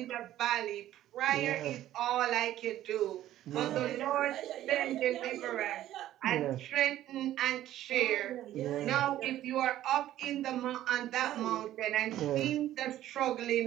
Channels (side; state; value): left; quieter; 13.2 dB